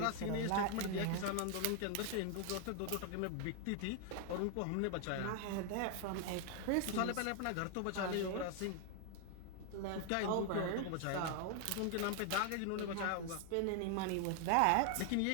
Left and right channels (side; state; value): both; different; correlation 0.00